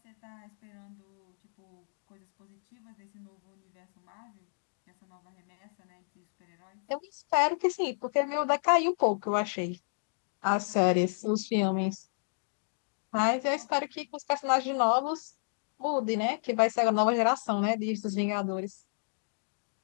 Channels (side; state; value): right; silent; digital silence